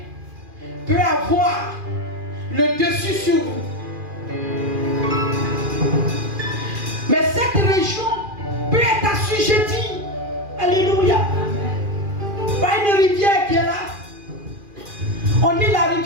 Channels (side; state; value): left; late; 2.4 ms